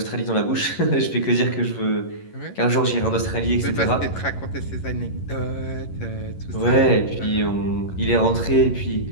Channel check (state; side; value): late; right; 11 ms